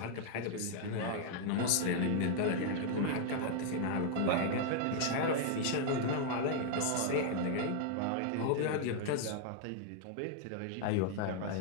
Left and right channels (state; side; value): different; both; correlation 0.00